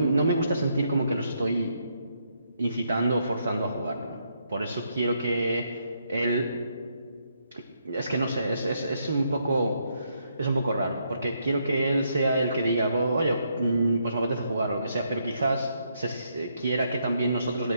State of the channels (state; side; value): inverted; both; correlation -0.76